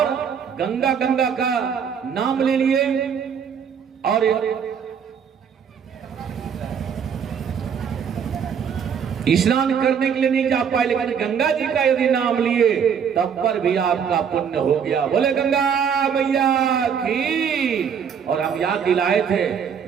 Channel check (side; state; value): left; quieter; 7.3 dB